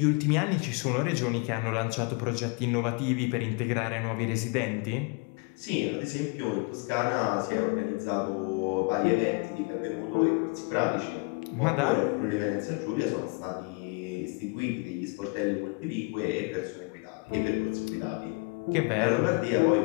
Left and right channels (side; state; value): right; quieter; 31.6 dB